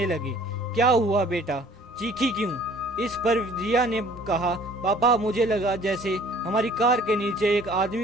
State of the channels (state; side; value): normal; both; correlation 0.54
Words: लगे, क्या हुआ बेटा, चीखी क्यों। इस पर रिया ने कहा, पापा मुझे लगा जैसे हमारी कार के नीचे एक